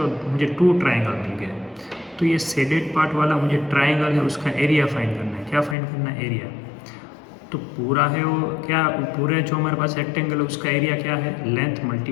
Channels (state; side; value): drops out; right; at 5.8 s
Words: हो मुझे टू ट्राइंगल मिल गए. तो ये शेडेड पार्ट वाला मुझे ट्राइंगल है, उसका एरिया फाइंड करना है. क्या फाइंड करना है, एरिया. तो पूरा है वो क्या, पूरे जो हमारे पास रेक्टेंगल है उसका एरिया क्या है, लेंथ